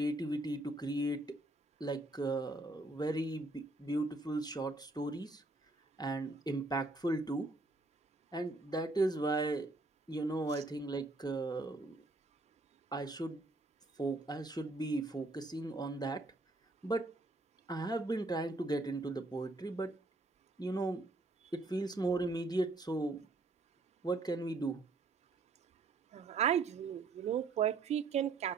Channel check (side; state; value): left; quieter; 3.0 dB